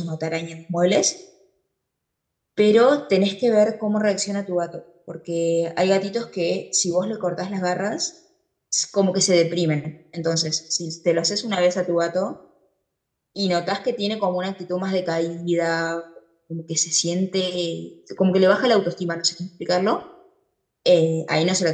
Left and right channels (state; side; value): identical; both; correlation 1.00